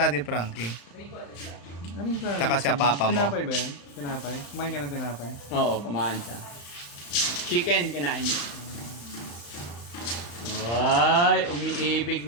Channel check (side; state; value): right; late; 35 ms